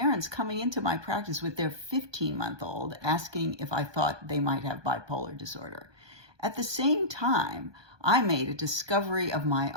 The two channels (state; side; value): late; left; 1.2 ms